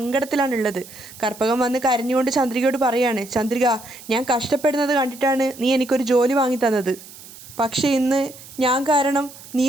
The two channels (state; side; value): noise; right; hiss, 18 dB below the sound